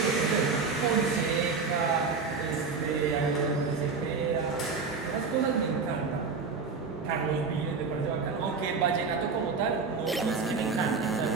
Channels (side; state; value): left; quieter; 4.8 dB